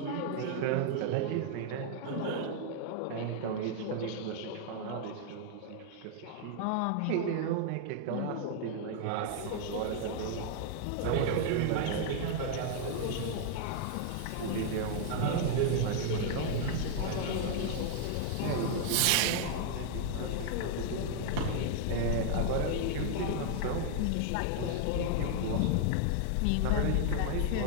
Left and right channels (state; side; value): different; both; correlation 0.00